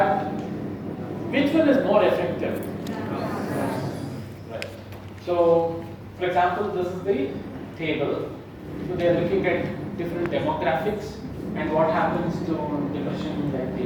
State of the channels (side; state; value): both; identical; correlation 1.00